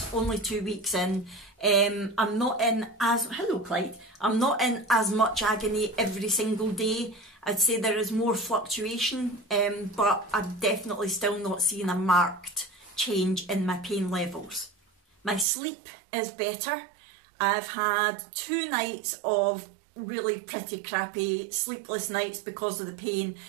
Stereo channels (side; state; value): left; drops out; at 15.5 s